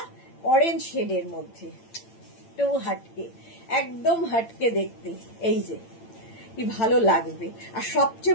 অরেঞ্জ শেডের মধ্যে, তো একদম হাটকে দেখতে। এই যে কি ভালো লাগবে, আর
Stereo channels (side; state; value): right; late; 8.9 ms